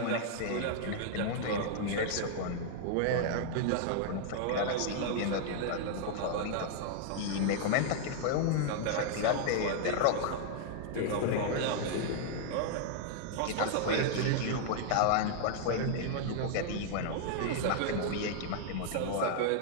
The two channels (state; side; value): different; both; correlation -0.01